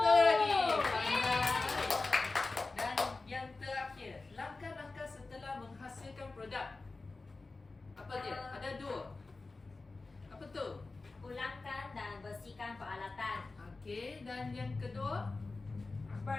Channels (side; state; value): right; quieter; 3.6 dB